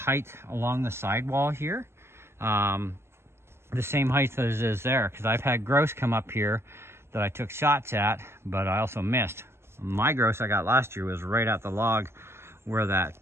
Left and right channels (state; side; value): late; left; 0.12 ms